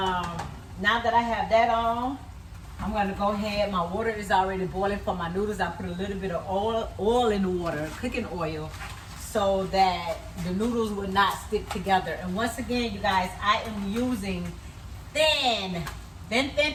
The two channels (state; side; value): identical; both; correlation 1.00